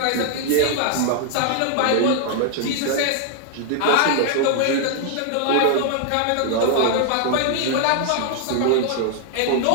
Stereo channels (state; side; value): different; both; correlation 0.00